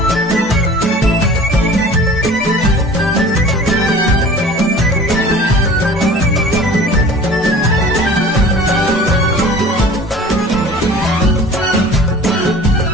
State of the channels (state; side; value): normal; both; correlation 0.44